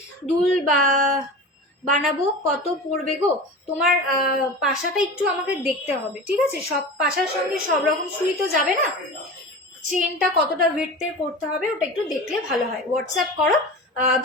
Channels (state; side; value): normal; both; correlation 0.31